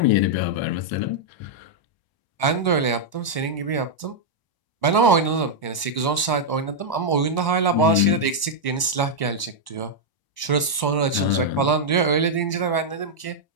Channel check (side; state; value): right; late; 1.0 ms